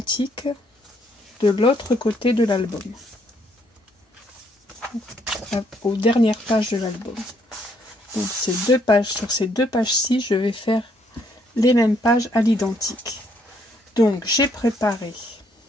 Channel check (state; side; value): normal; both; correlation 0.69